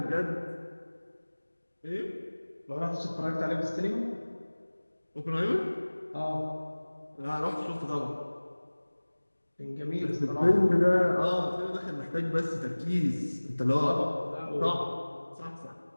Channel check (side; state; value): both; inverted; correlation -1.00